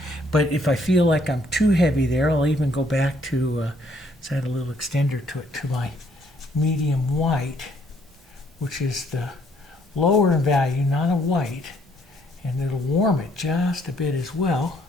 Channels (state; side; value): normal; both; correlation 0.67